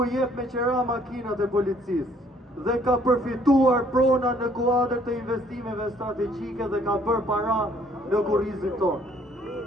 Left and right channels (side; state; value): both; normal; correlation 0.62